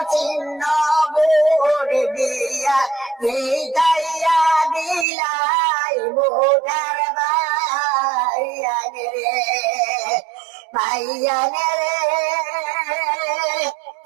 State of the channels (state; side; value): drops out; left; at 5.1 s